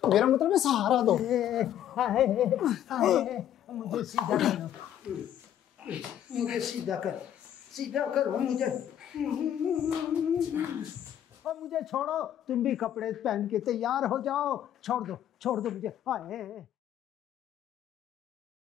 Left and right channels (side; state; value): right; quieter; 10.7 dB